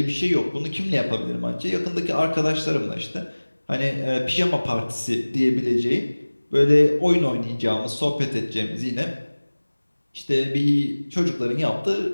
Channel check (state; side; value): inverted; both; correlation -1.00